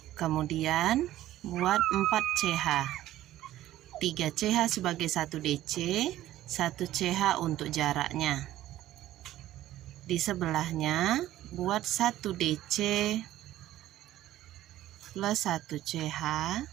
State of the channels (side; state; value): left; quieter; 14.1 dB